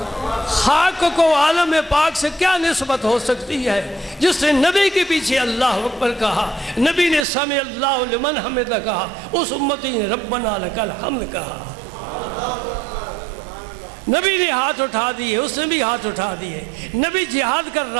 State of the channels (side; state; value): left; drops out; at 7.2 s